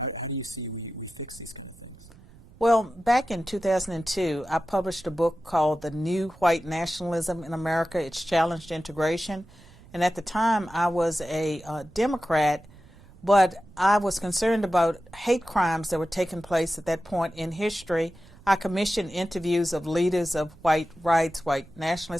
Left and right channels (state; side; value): noise; right; rumble, 23 dB below the sound